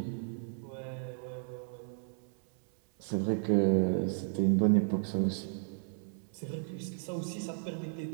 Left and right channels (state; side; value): silent; left; 55 dB below the other